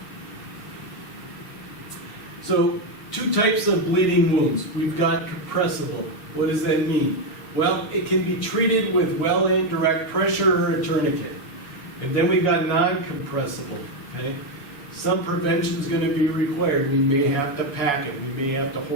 So, two types of bleeding wounds. We've got compressible. What does that mean? Well, it can be treated with well-aimed direct pressure or a tourniquet. And then we've got non-compressible, okay? Some prevention is going to be required. We may have to pack it. We may have to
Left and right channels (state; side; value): late; right; 7.1 ms